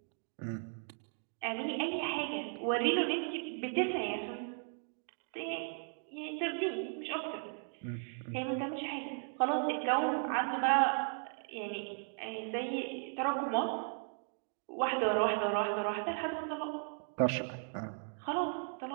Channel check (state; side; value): silent; left; 53 dB below the other